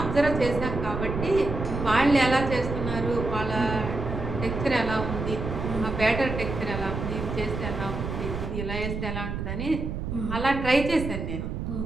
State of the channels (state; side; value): noise; right; rumble, 5 dB below the sound